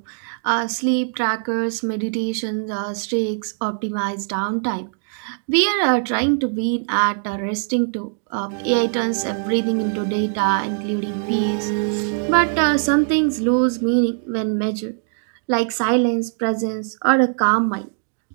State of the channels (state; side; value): silent; left; digital silence